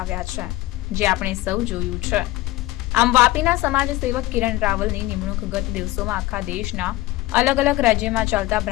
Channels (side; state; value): right; quieter; 18.0 dB